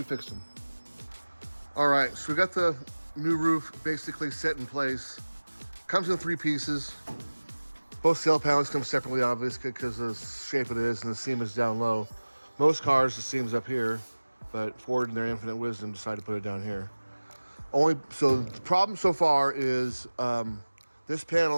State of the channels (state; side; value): inverted; both; correlation -1.00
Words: fixed them. All right, so we got the new roof basically set in place. Comes in 3 pieces. Both sail panels come separately, obviously, because of the shape it is and the seam is down low. Most cars, the seam's up here, but Ford, in their infinite wisdom, decided to put it down here. So the problem so far is this